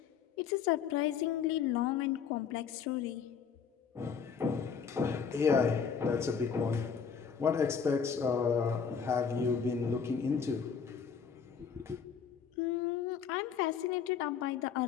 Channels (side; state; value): right; quieter; 6.7 dB